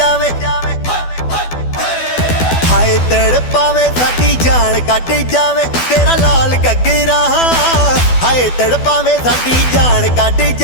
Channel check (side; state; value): right; late; 12 ms